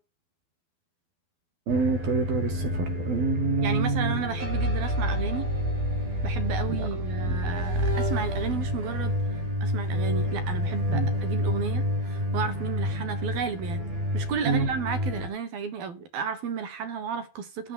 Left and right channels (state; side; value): late; left; 12 ms